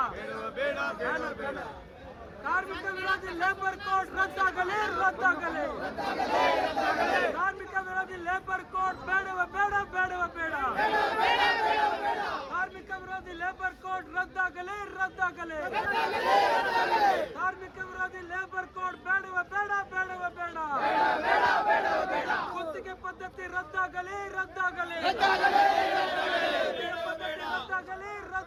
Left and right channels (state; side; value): identical; both; correlation 1.00